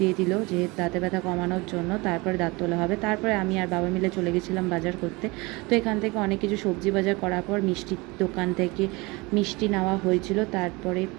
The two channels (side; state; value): left; quieter; 24.7 dB